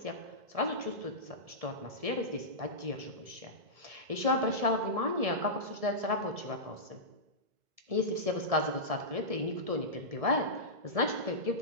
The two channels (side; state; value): left; late; 1.7 ms